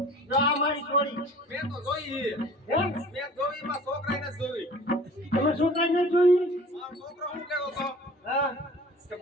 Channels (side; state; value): both; normal; correlation 0.46